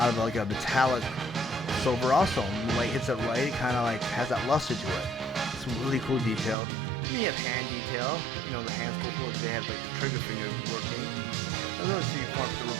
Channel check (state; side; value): drops out; left; at 6.6 s